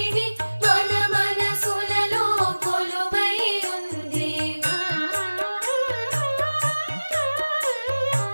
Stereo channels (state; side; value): inverted; both; correlation -1.00